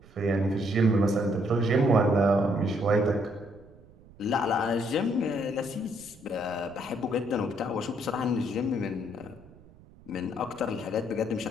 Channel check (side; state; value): right; noise; rumble, 24 dB below the sound